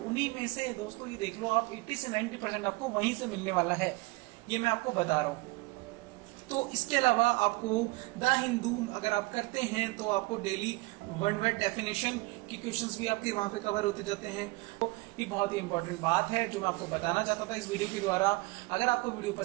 उन्हीं में से दोस्तों ये देख लो आप 80 से 90% आपको वहीं से मिलने वाला है, ये मैं आपको बता रहा हूँ। तो इसके अलावा आपको द हिंदू अगर आप करते हैं तो आपको डेली वन वर्ड डेफिनेशन की क्वेश्चंस भी आपके वहां पे कवर होते जाते हैं। तो ये बहुत ही इंपॉर्टेंट बात है जो मैं आपको बताना चाहता था इस वीडियो के द्वारा। अगर आपको वीडियो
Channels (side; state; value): left; quieter; 23.9 dB